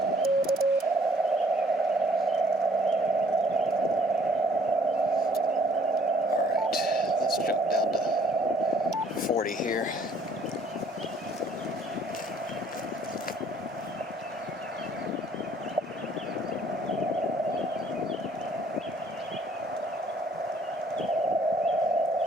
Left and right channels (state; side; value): normal; both; correlation 0.60